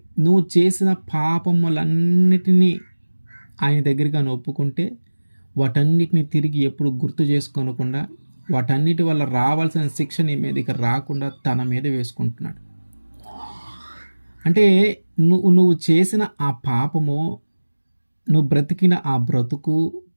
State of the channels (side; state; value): both; inverted; correlation -1.00